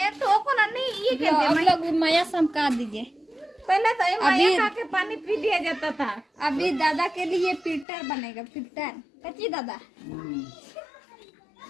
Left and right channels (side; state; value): right; drops out; at 7.9 s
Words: तो को ना नहीं ये कहते हैं। हम लोग माया समका दीजिए। पहले तो ये माया खा के पानी पी लिया जाता था। अभी दादा के लिए फिल्टर बनेगा, फिल्टर। कच्ची दादा